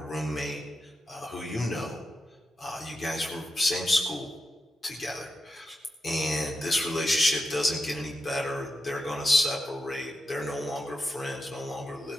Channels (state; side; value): normal; both; correlation 0.87